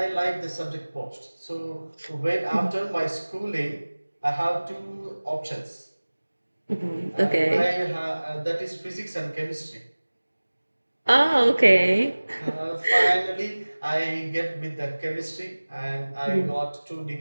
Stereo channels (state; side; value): inverted; both; correlation -1.00